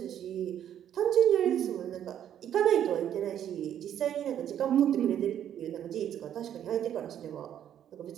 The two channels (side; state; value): left; quieter; 10.2 dB